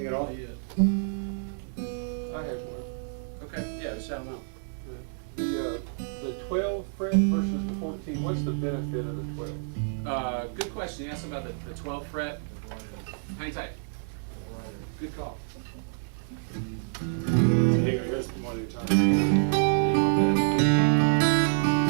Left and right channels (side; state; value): left; silent; digital silence